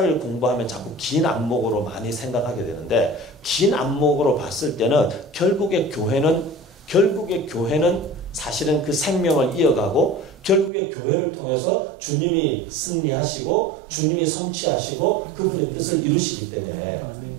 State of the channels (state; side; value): drops out; left; at 10.7 s